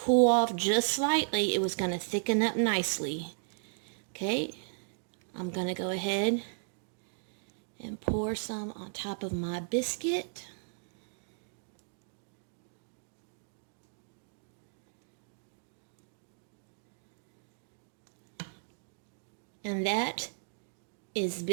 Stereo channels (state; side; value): silent; left; digital silence